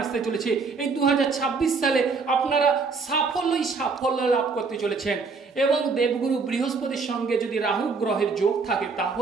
আসতে চলেছে। এই 2026 সালে আপনারা সাফল্য লাভ করতে চলেছেন। এবং দেবগুরু বৃহস্পতির সঙ্গে যদি রাহু গ্রহের যোগ থাকে,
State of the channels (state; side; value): quieter; left; 4.6 dB